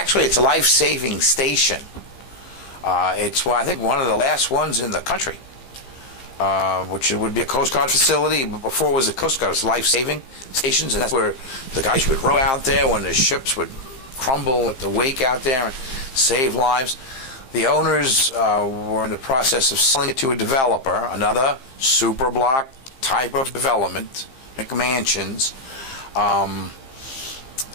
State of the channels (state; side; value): late; right; 15 ms